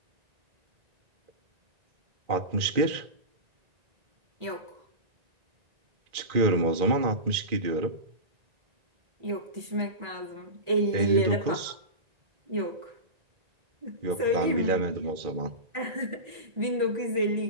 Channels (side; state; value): left; late; 2.4 ms